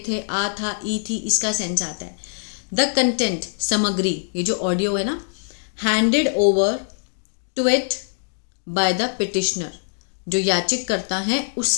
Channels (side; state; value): right; silent; digital silence